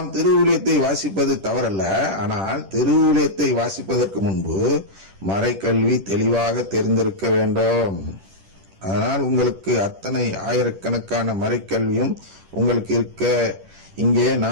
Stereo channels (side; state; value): left; late; 10 ms